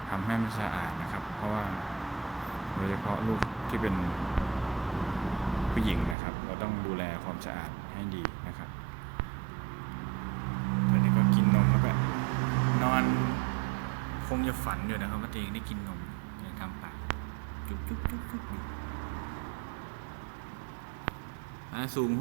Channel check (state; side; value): drops out; left; at 6.2 s